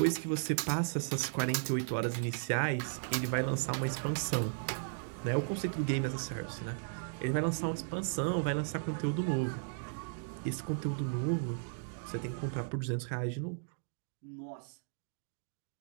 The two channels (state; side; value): silent; left; digital silence